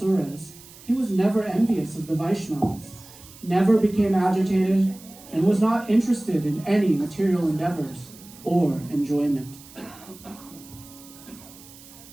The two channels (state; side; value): noise; right; hiss, 20 dB below the sound